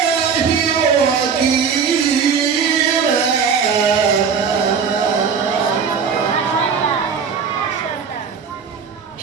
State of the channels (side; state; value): left; quieter; 6.3 dB